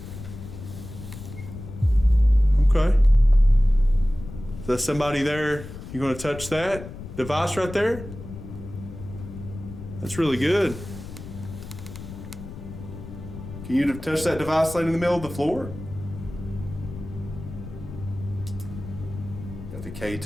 Okay. there's somebody there. You gonna touch that device right there? That's really good. Can you touch that device laying in the middle of the floor? Got the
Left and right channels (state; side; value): noise; left; rumble, 12 dB below the sound